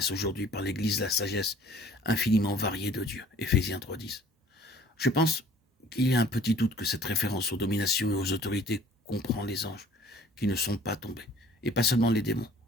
aujourd'hui par l'Église la sagesse infiniment variée de Dieu. Éphésiens 3.10. Je pense qu'il y a un petit doute que cette référence aux dominations et aux autorités comprend les anges qui ne sont pas tombés, et pas seulement les démons.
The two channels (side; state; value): both; normal; correlation 0.52